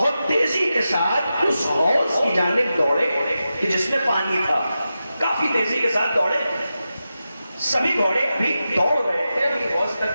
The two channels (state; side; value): inverted; both; correlation -0.91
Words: تیزی کے ساتھ اس حوض کی جانب دوڑے کہ جس میں پانی تھا، کافی تیزی کے ساتھ دوڑے۔ سبھی گھوڑے ابھی دوڑ رہے تھے، ابھی حوض